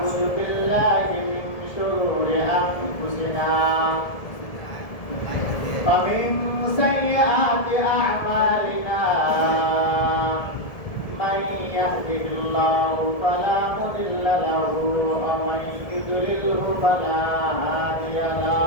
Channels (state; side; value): late; right; 1.7 ms